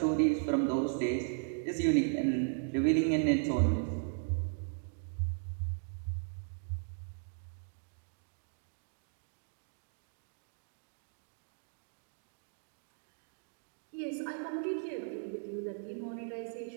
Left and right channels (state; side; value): silent; left; digital silence